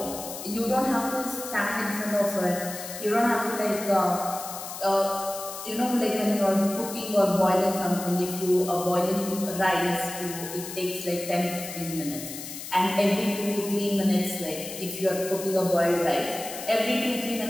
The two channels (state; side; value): noise; left; hiss, 10 dB below the sound